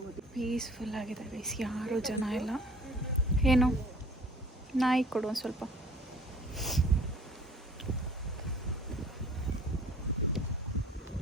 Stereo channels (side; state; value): both; normal; correlation 0.51